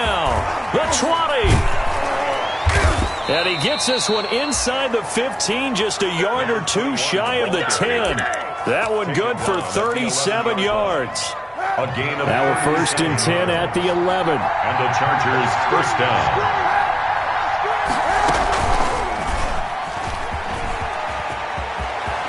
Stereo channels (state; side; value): identical; both; correlation 1.00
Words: The 20. And he gets this one inside the 15, just a yard or 2 shy of the 10. That one good for 37 yards. Now a 1st and 10 at the 11. And the Chargers first down.